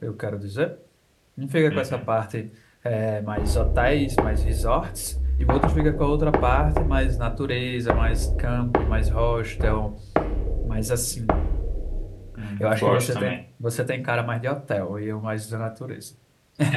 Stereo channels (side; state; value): both; identical; correlation 1.00